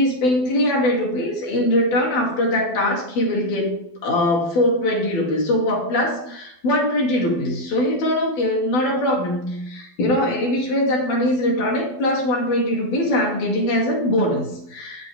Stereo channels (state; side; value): late; right; 12 ms